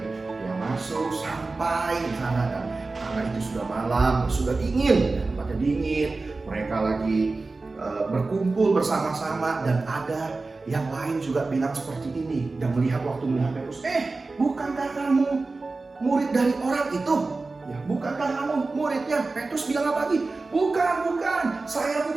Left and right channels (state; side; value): quieter; left; 3.6 dB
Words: Dia masuk sampai di sana, dan karena itu sudah malam, sudah dingin, ya, tempatnya dingin. Mereka lagi berkumpul bersama-sama, dan ada yang lain juga bilang seperti ini. Dan melihat Petrus, bukankah kamu murid dari orang itu? Ya, bukankah kamu muridnya? Petrus bilang apa lagi? Bukan, saya